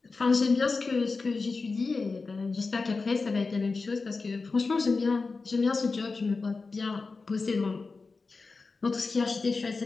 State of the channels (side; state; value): right; quieter; 4.1 dB